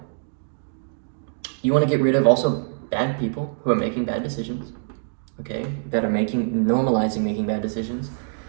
you want to get rid of also bad people who are making bad decisions, okay? That are normalizing making bad decisions.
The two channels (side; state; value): left; silent; digital silence